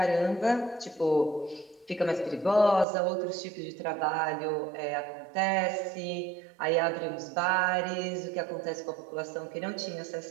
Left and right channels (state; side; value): drops out; left; at 2.9 s